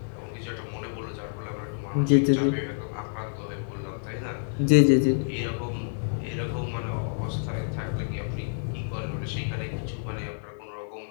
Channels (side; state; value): right; silent; digital silence